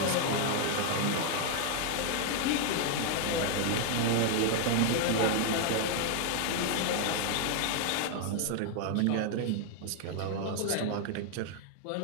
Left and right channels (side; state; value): both; different; correlation 0.00